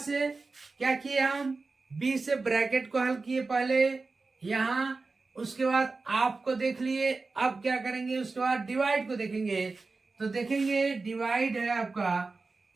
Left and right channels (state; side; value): quieter; left; 3.9 dB